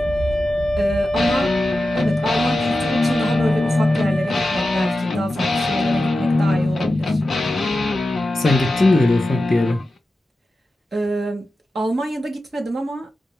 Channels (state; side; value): normal; both; correlation 0.92